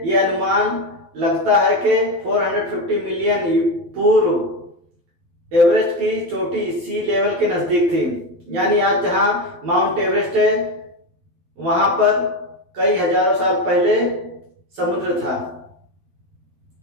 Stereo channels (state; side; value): late; left; 12 ms